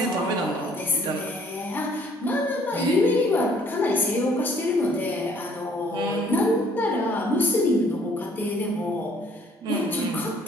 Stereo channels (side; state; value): both; normal; correlation 0.61